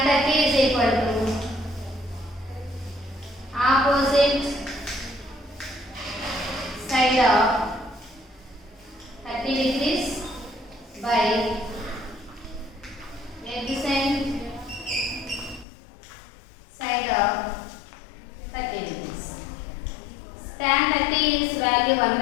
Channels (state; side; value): drops out; right; at 15.7 s